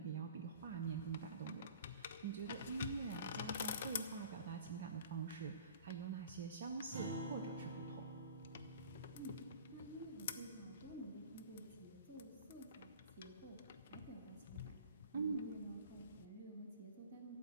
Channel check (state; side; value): inverted; both; correlation -0.44